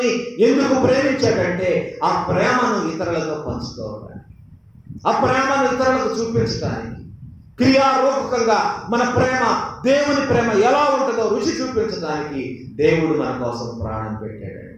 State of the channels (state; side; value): identical; both; correlation 1.00